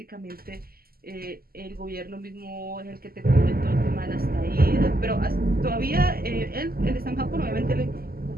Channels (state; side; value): late; left; 0.43 ms